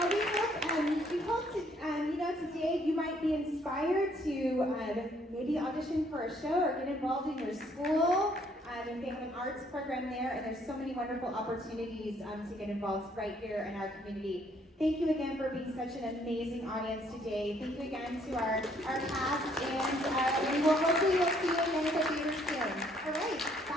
we hope today you might be inspired to maybe audition for a show or get involved in your school. And they have an arts program there, and there's so many wonderful opportunities to get involved right here in our community. Thank you again for being such an amazing audience today. Thank you again to our cast, and we will hopefully see you again at the theater soon. All right,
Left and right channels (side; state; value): both; normal; correlation 0.66